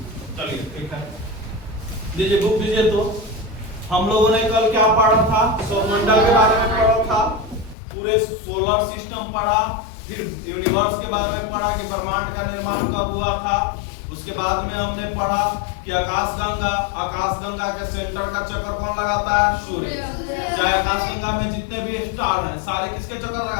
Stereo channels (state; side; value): drops out; right; at 7.8 s